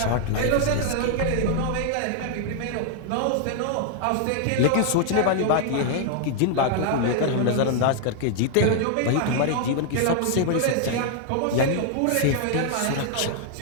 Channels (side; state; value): both; different; correlation 0.00